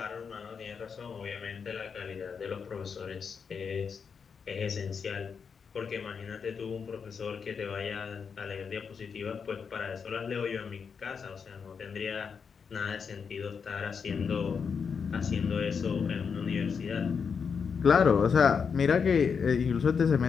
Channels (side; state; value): right; quieter; 6.1 dB